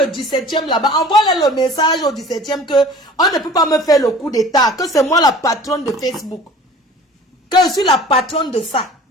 17e là-bas, envoie-leur le message au 17e que on ne peut pas me faire le coup d'état. Que c'est moi la patronne de Facebook. Que je suis la patronne de ça.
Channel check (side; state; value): both; normal; correlation 0.45